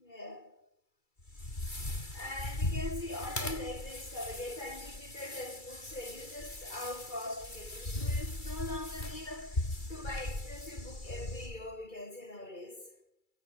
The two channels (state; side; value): late; right; 2.3 ms